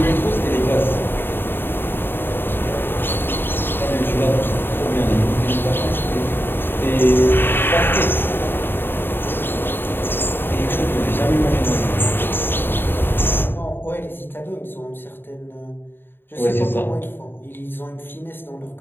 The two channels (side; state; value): right; late; 0.10 ms